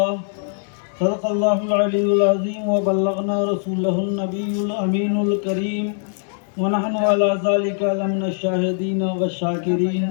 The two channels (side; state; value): right; silent; 65 dB below the other